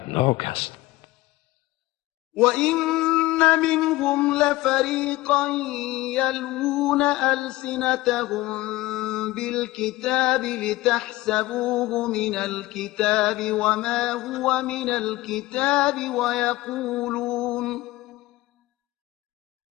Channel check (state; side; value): quieter; right; 18.7 dB